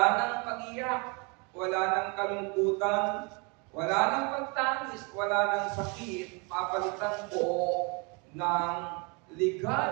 nang pag-iyak, wala nang kalungkutan, wala nang pagtangis, wala nang sakit. Papalitan po ng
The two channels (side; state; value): left; quieter; 31.6 dB